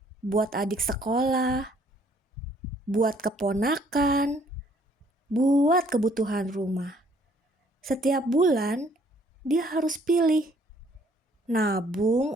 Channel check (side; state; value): both; normal; correlation 0.62